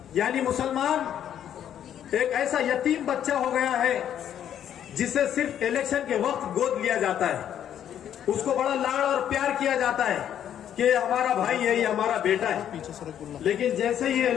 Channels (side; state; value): right; quieter; 10.0 dB